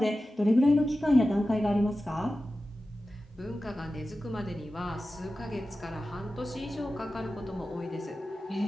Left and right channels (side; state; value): both; normal; correlation 0.94